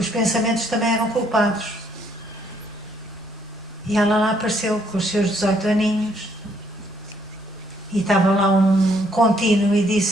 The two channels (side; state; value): both; normal; correlation 0.68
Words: pensamentos também eram culpados. E ela lá apareceu com os seus 18 aninhos e estava lá um contínuo e